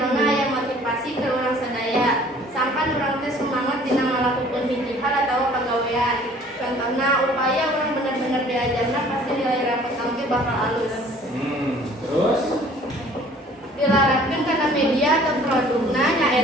aya motivasi ke urang sadaya. Sampan urang teh semangat dina ngalakukeun hiji hal atawa pagawean. Contohna upaya urang bener-bener diajarna pasti nilai rapot teh bakal alus. Terus Dilarapkeun kana media atau produkna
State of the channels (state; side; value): normal; both; correlation 0.53